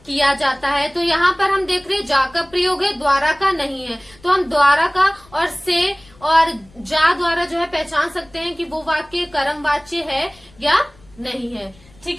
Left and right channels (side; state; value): left; noise; rumble, 27 dB below the sound